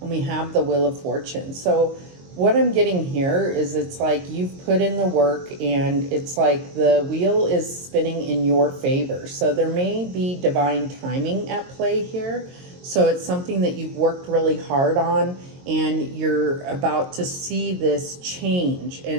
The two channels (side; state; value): left; late; 22 ms